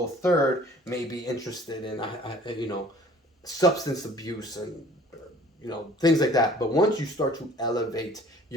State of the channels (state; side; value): normal; both; correlation 0.51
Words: third may be interested in, substance abuse and, things like that. But once you start to elevate,